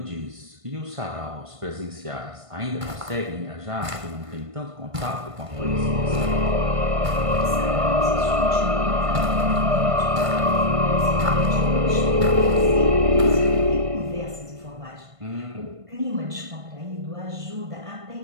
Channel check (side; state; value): left; late; 1.5 ms